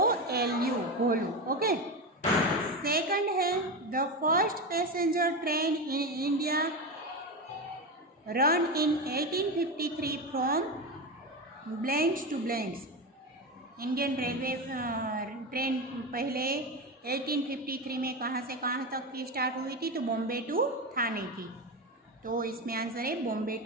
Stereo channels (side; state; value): both; normal; correlation 0.18